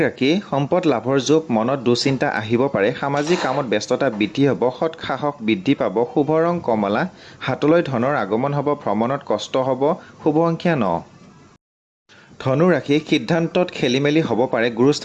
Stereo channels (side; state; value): both; identical; correlation 1.00